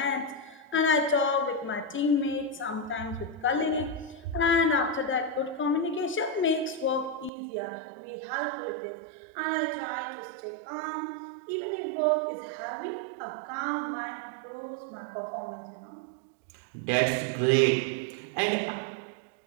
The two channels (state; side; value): drops out; left; at 7.3 s